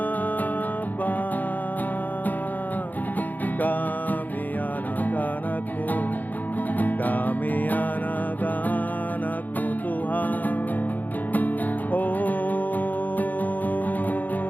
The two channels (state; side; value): late; right; 0.083 ms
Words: kami anak-anak-Mu, kami anak-anak-Mu Tuhan. Oh,